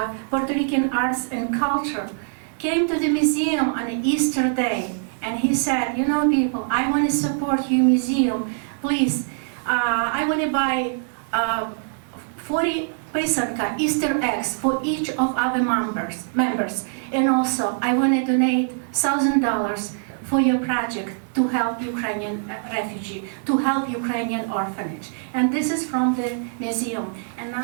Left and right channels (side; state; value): left; silent; digital silence